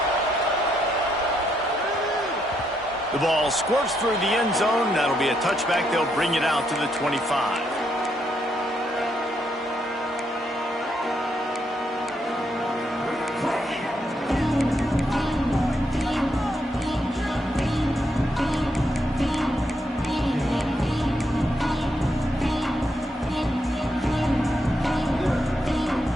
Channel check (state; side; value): normal; both; correlation 0.78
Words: The ball squirts through the end zone. That'll be a touchback. They'll bring it out to the 25.